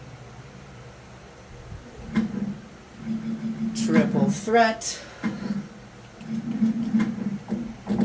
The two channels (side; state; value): both; identical; correlation 1.00